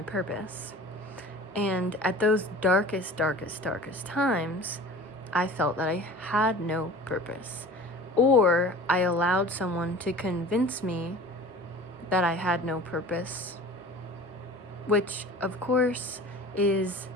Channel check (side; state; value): both; normal; correlation 0.41